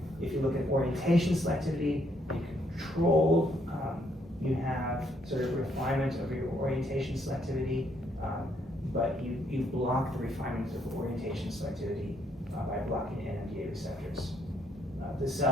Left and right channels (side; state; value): both; normal; correlation 0.71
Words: If you look at orientation selectivity, you control, you have sort of refinement of your orientation selectivity, but you block the refinement of orientation selectivity by blocking NMDA receptors. The